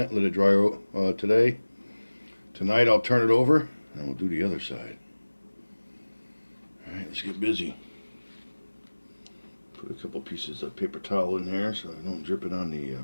let it dry today. Tonight I'll turn it over and we'll do the other side. Alright, let's get busy. Put a couple pieces of paper towel in there so I don't drip it on the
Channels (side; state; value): both; inverted; correlation -1.00